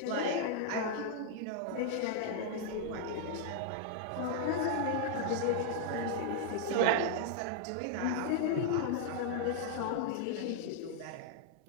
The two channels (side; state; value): both; different; correlation -0.01